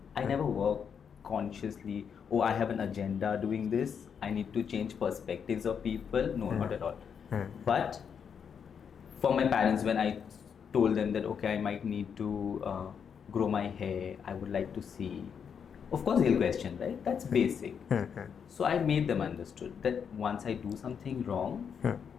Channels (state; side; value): quieter; right; 7.1 dB